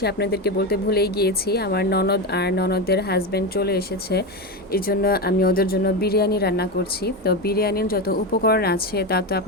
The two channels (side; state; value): both; normal; correlation 0.16